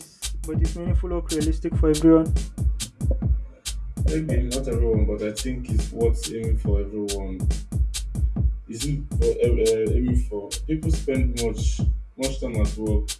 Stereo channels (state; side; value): identical; both; correlation 1.00